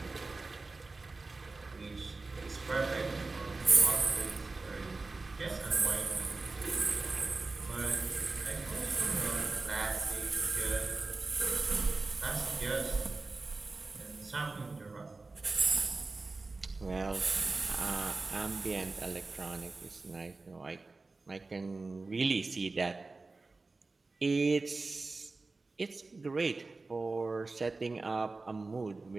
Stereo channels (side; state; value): left; quieter; 3.6 dB